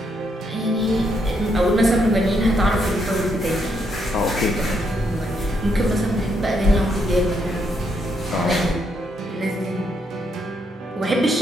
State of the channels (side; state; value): both; normal; correlation 0.76